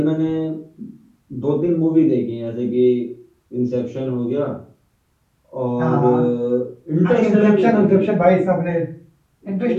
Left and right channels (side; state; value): both; identical; correlation 1.00